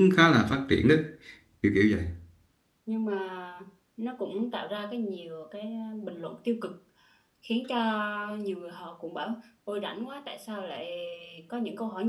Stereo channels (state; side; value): identical; both; correlation 1.00